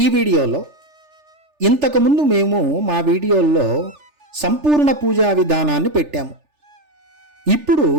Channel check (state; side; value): late; left; 3.4 ms